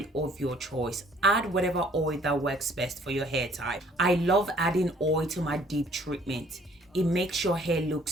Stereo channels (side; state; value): both; normal; correlation 0.59